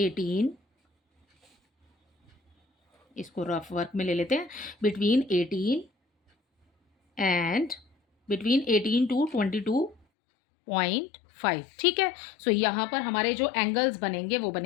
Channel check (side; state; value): right; drops out; at 10.0 s